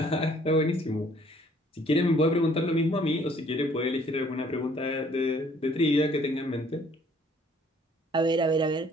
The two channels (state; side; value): normal; both; correlation 0.60